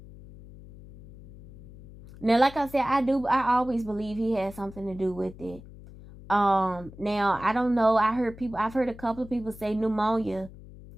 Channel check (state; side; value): noise; left; hum, 18 dB below the sound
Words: Now, like I said, I always believe he had something to do with it. Now, I don't know. I've heard a couple of people say pneumonia